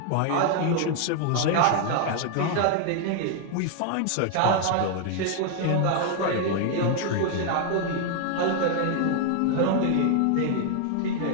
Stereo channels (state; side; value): different; both; correlation 0.00